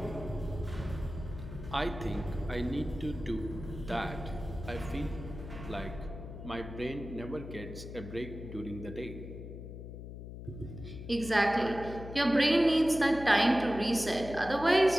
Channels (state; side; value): noise; left; hum, 11 dB below the sound